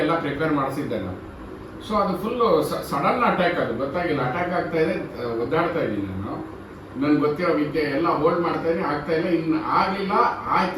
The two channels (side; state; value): both; identical; correlation 1.00